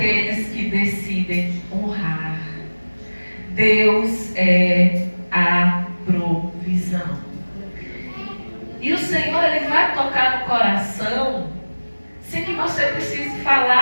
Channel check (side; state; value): both; inverted; correlation -1.00